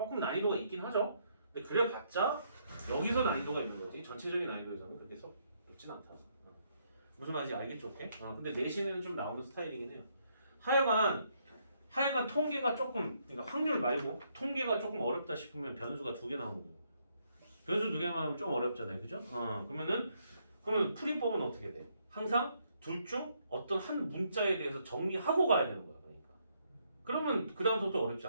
난이도가 있긴 하죠. 근데 그래봤자 여기서 난이도가 있는 거지 전체적인 난이도에서는 그렇게 썩 높진 않다. 무슨 말인지 알겠죠? 오케이? 근데 내신에는 좀 나오는 스타일이긴 해요. 하여간 통계가 조금 그러니까 확률 말고 통계가 조금 어렵다 싶으면 변수가 2개 나오는 거예요. 변수 2개만 하면 좀 어렵잖아요. 그죠? 그러면 풀이법은 어떻게 돼? 항상 둘 중 어떤 한 문자에 대해서 정리하고 가야 되는 거야. 그러면 그 다음부터 어렵지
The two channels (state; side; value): inverted; both; correlation -0.73